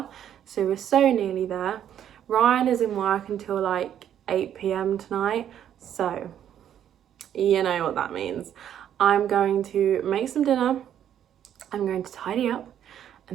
so we're so nearly there. Ryan is in work until like 8 p.m. tonight, so you know what that means. I'm going to make some dinner, I'm going to tidy up,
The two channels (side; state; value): left; quieter; 10.0 dB